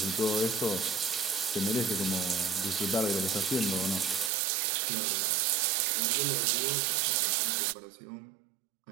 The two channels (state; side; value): drops out; left; at 4.3 s